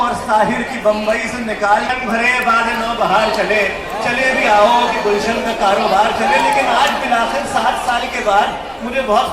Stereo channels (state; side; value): identical; both; correlation 1.00